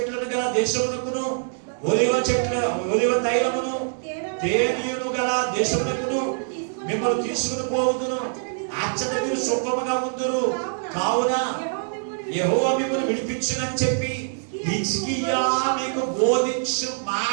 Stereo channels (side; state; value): left; silent; digital silence